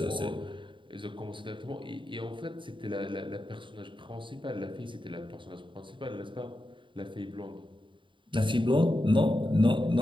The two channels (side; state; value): left; late; 0.24 ms